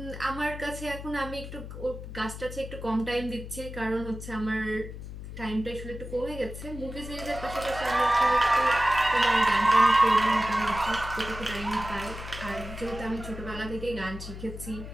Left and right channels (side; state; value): left; noise; hum, 10 dB below the sound